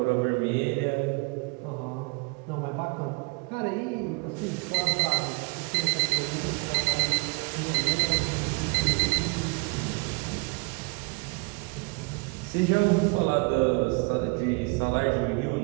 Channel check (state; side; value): quieter; left; 30.7 dB